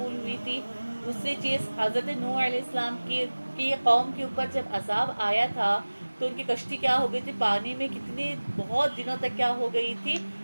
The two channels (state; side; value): inverted; both; correlation -1.00